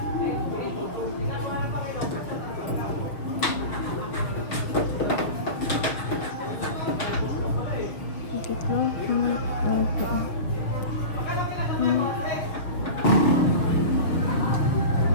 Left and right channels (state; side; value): late; right; 6.5 ms